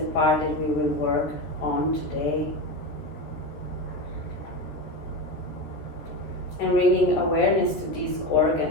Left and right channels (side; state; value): right; late; 13 ms